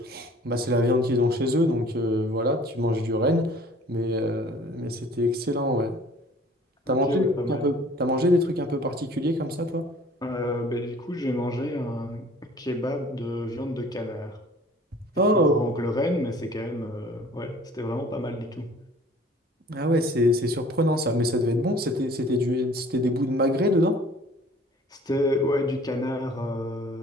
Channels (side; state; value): both; normal; correlation 0.51